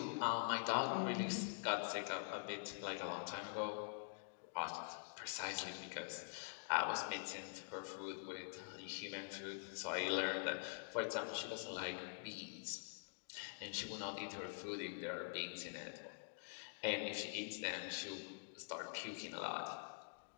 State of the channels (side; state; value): right; silent; digital silence